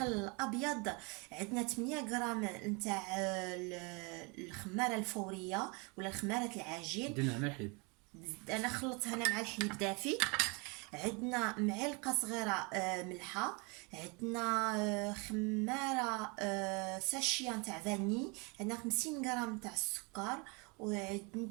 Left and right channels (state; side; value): quieter; left; 30.5 dB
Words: الابيض، عندنا 8 غرام نتاع الخماره الفوريه ولا خماره العجين. درنا مع الحليب. انا خلطتها انا مع الحليب دافي. عندنا معلقه صغيره ملحه، عندنا خماره ساشيه نتاع فاني، عندنا 50 غرام تاع السكر،